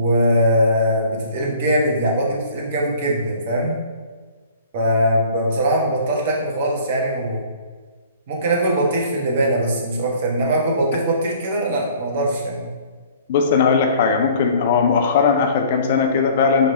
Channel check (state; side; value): inverted; both; correlation -0.51